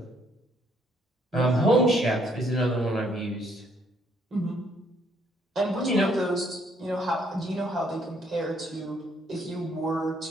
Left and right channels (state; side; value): normal; both; correlation 0.68